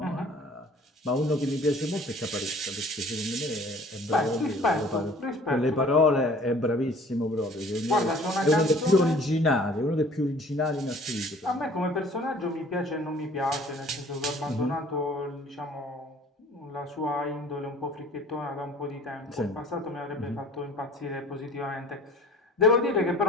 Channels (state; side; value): normal; both; correlation 0.50